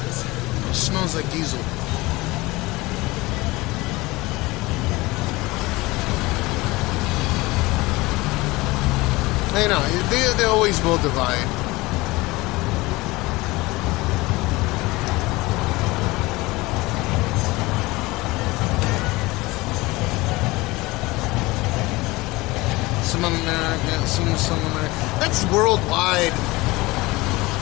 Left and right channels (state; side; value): quieter; right; 21.5 dB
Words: It smells like diesel. I know, they always will divide. Some America, some America. That's worldwide.